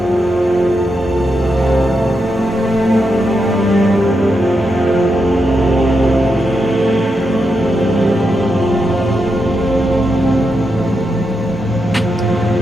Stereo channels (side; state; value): both; normal; correlation 0.85